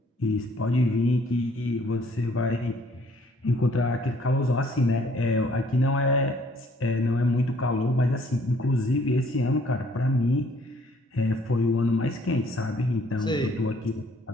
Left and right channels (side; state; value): both; normal; correlation 0.61